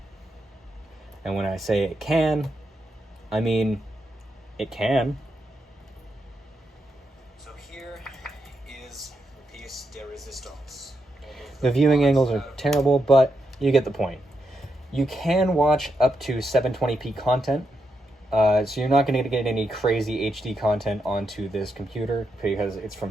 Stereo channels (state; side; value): normal; both; correlation 0.83